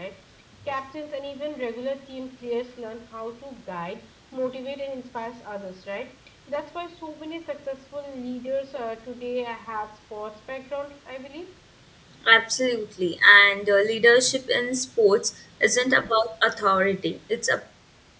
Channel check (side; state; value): both; identical; correlation 1.00